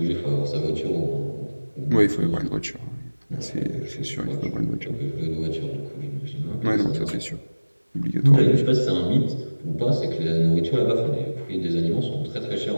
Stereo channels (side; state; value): both; inverted; correlation -1.00